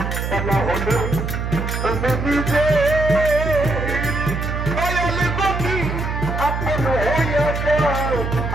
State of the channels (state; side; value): noise; right; hum, 3 dB below the sound